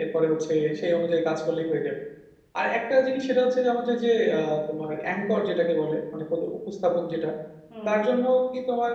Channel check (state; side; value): identical; both; correlation 1.00